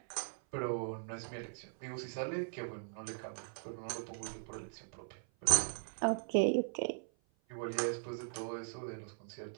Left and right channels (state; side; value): silent; left; 51 dB below the other